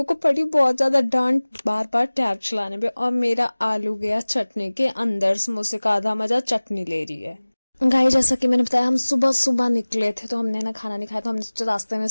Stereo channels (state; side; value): inverted; both; correlation -1.00